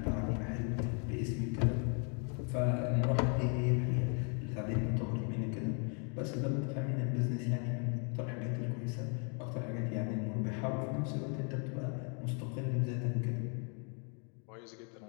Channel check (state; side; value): quieter; right; 38.9 dB